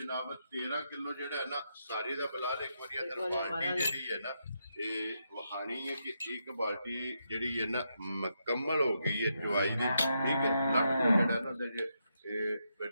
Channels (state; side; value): inverted; both; correlation -0.82